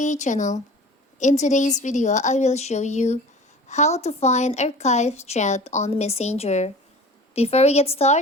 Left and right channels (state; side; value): normal; both; correlation 0.41